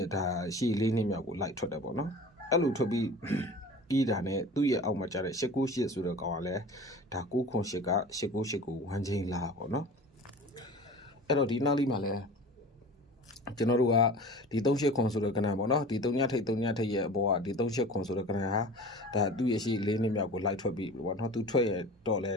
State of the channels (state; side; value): normal; both; correlation 0.39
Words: ဲ့ဒါရှေ့4နှစ်မြောက်ကိုလိုက်ထွက်တယ်ပေါ့နော်အဲ့လိုထွက်ပြီးပြီးတာနဲ့သူ့ရဲ့အောက်မှာကျတဲ့898ဆိုတဲ့ကောင်ကလည်းဒါ908က898ကို1ချိန်လာပေါ့နော်အဲ့တော့ဒီနောက်လေးမှာလည်းကျွန်တော်တို့ကဒီ38ခွန်ဆိုတဲ့ကဏ္ဍပေါ့နော်ဒီ3ညထိပ်ရဲ့အပေါ်ကဒီ38ခွန်ဆိုတဲ့ကဏ္ဍဟာဒါသူ့ရဲ့ရှိ4နှစ်မြောက်ကိုလိုက်ထွက်ပြီးပေါ့နော်သူထွက်ရတော့လဲ